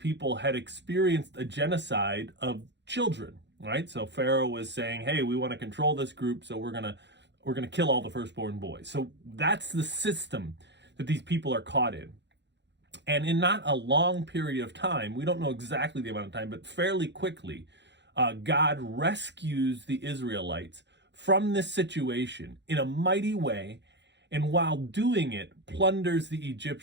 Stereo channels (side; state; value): left; late; 0.51 ms